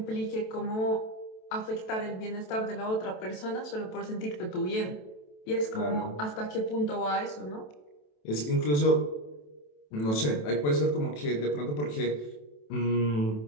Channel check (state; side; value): late; right; 27 ms